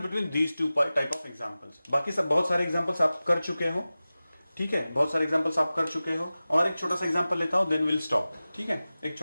between these two type of examples. बाकी सब बहुत सारे एग्जांपल्स आप कर चुके हो, ठीक है, बहुत सारे एग्जांपल्स आप कर चुके हो। और एक छोटा सा एग्जांपल लेता हूं, देन विल स्टॉप, ठीक है। एक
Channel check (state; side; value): inverted; both; correlation -0.96